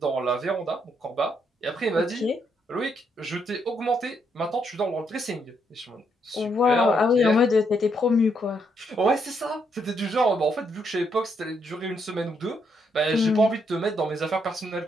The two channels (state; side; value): normal; both; correlation 0.76